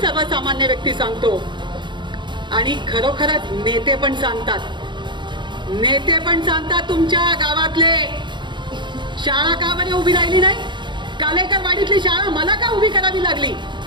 व्यक्ती सांगतो. आणि खरोखरच नेते पण सांगतात. नेते पण सांगतात तुमच्या गावातले शाळा का बरी उभी राहिली नाही? कालेकर वाडीतली शाळा मला का उभी करावी लागली?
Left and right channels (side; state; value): left; late; 0.23 ms